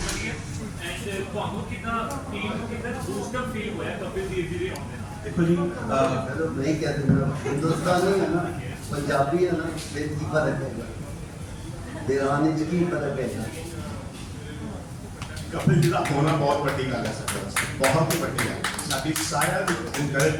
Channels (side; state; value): both; identical; correlation 1.00